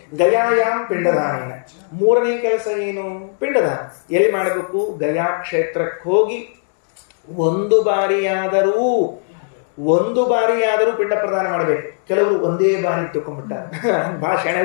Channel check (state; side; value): silent; right; digital silence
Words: ಗಯಾಯಾಮ್ ಪಿಂಡದಾನೇನ, 3ನೇ ಕೆಲಸ ಏನು? ಪಿಂಡದಾನ. ಎಲ್ಲಿ ಮಾಡಬೇಕು? ಗಯಾ ಕ್ಷೇತ್ರಕ್ಕೆ ಹೋಗಿ ಒಂದು ಬಾರಿಯಾದರೂ ಪಿಂಡ ಪ್ರದಾನ ಮಾಡಬೇಕು. ಕೆಲವರು ಒಂದೇ ಬಾರಿ ತಿಳ್ಕೊಂಡ್ಬಿಟ್ಟಾರೆ, ಭಾಳ ಶೆಣೆ